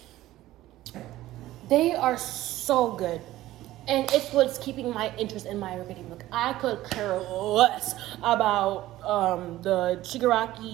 they are so good. And it's what's keeping my interest in My Hero Academia. Like, I could care less about the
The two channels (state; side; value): quieter; left; 15.5 dB